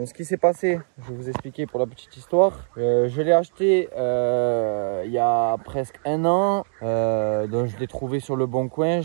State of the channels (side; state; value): left; silent; 63 dB below the other